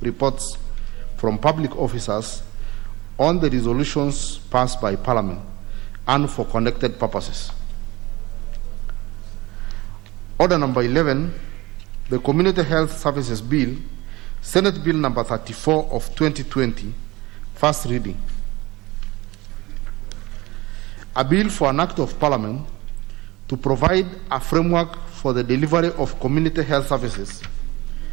reports from public officers on the resolutions passed by Parliament and for connected purposes. Order number 11, the Community Health Services Bill, Senate Bill number 34 of 2020, first reading. A bill for an act of Parliament to provide a framework for the delivery of community health services,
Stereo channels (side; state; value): left; quieter; 20.6 dB